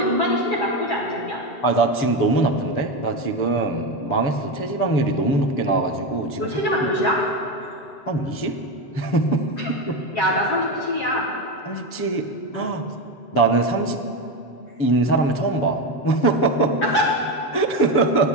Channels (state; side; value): late; right; 6.9 ms